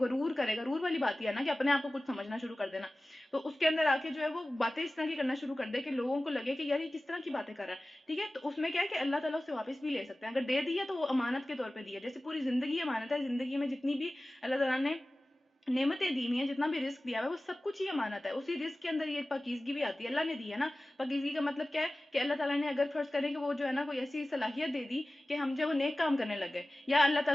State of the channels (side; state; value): both; normal; correlation 0.97